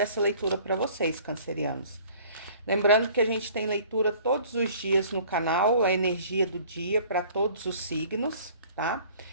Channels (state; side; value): inverted; both; correlation -0.51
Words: leitura para vocês, cancerianos. Lembrando que a gente tem leitura todos os dias no canal, a energia do dia para todos os signos, tá?